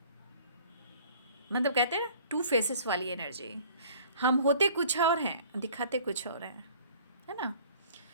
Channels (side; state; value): both; inverted; correlation -0.51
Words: मतलब कहते हैं ना, 2 फेसेस वाली एनर्जी। हम होते कुछ और हैं, दिखाते कुछ और हैं, है ना।